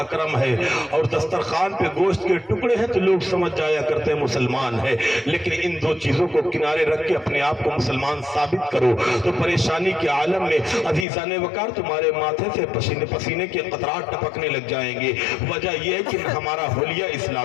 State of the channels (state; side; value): drops out; right; at 11.1 s